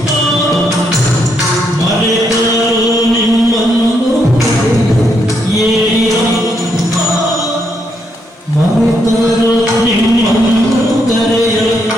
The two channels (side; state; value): both; normal; correlation 0.77